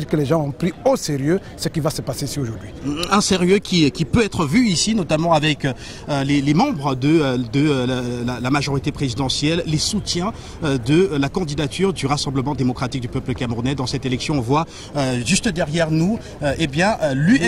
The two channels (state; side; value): identical; both; correlation 1.00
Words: que les gens ont pris au sérieux ce qui va se passer ici aujourd'hui. Un sérieux qui peut être vu ici, notamment avec les membres de la majorité présidentielle, les soutiens de la candidature du Rassemblement démocratique du peuple camerounais. Dans cette élection, on voit juste derrière nous